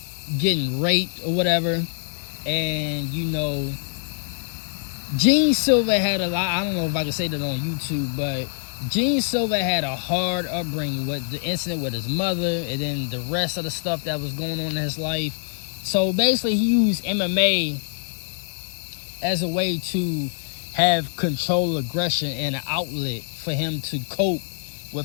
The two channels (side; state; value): right; silent; digital silence